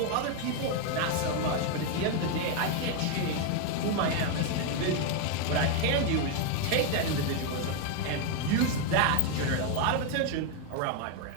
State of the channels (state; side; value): different; both; correlation 0.01